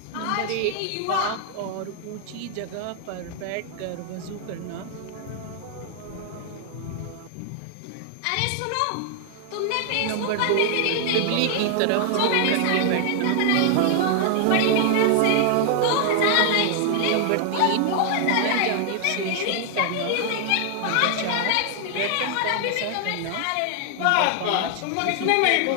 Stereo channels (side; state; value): both; different; correlation 0.00